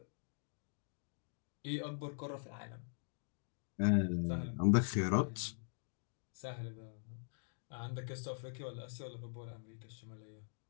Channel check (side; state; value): right; silent; digital silence